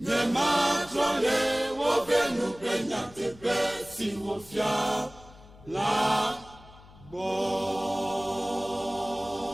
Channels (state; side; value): noise; left; hum, 22 dB below the sound